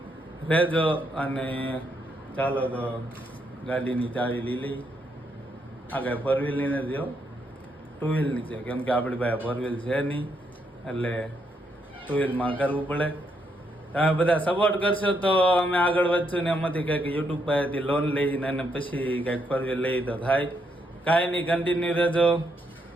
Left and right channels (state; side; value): normal; both; correlation 0.77